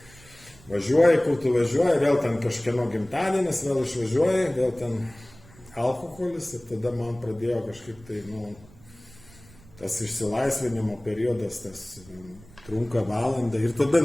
Važiuoji, kur tu važiuoji, vėl ten kažkieno gimtadienis, vėl išvažiuoji, vėl ten alkoholis ir tada man pradėjo kažkaip tai, tas išsilaisvinimo periodas, tas trunka valandą ir tada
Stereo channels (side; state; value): right; noise; rumble, 24 dB below the sound